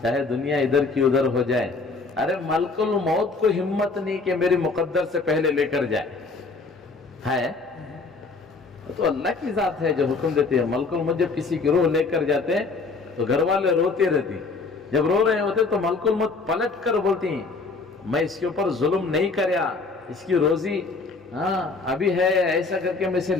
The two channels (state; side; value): quieter; right; 4.0 dB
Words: चाहे दुनिया इधर की उधर हो जाए। अरे मलकुल मौत को हिम्मत नहीं कि मेरी मुकद्दर से पहले लेकर जाए, है तो अल्लाह की जात है जो हुक्म देती है। मलकुल मौत जब किसी की रूह लेकर जाते हैं तो घर वाले रोते रहती, जब रो रहे होते तो मलकुल मौत पलट कर बोलती, मैं इसके ऊपर जुल्म नहीं करया, इसकी रोजी हाँ अभी है, ऐसा करके मैं इसे